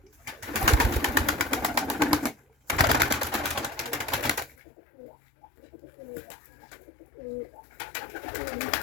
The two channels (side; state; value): right; drops out; at 4.5 s